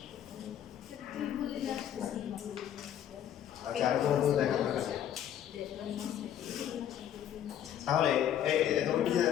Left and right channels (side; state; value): right; quieter; 10.4 dB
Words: তুই বললি আসতেছে আচ্ছা আর কোনো তো দেখা দরকার নেই। তাহলে এই তুমি পিছিয়ে